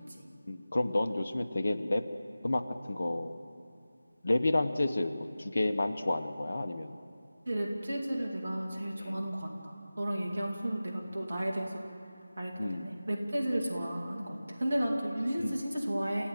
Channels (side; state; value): both; inverted; correlation -0.96